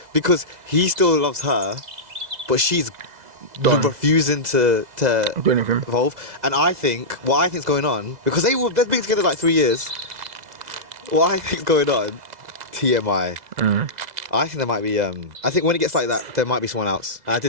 because he still loves her, but she's refusing to do anything. evolve. And what I think's going on, because they've been together like 3 years. What I think's going on, TMI. I think there might be. I think when it gets like that, there might be someone else. And I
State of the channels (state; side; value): late; left; 2.0 ms